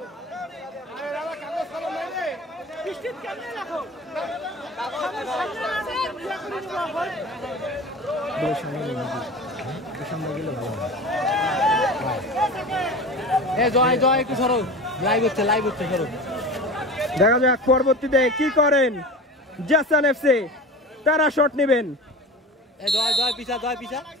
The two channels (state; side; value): normal; both; correlation 0.33